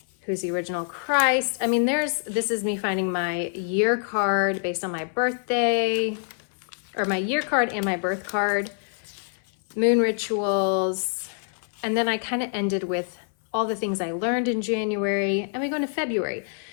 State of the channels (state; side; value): silent; right; 59 dB below the other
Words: Who's the original Christ? I mean, this is me finding my year card based on my birthday, or my year card and my birth card. Moon rituals. And then I kind of ended with all the things I learned in January. And we go into February.